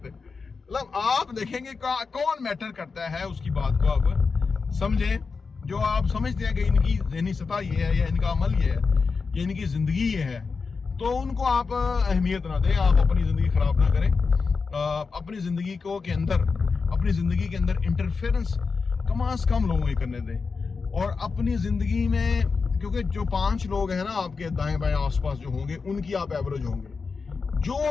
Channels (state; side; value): quieter; right; 4.8 dB